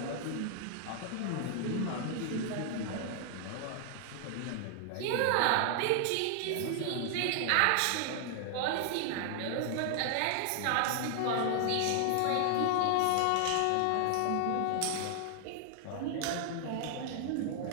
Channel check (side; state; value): both; different; correlation 0.00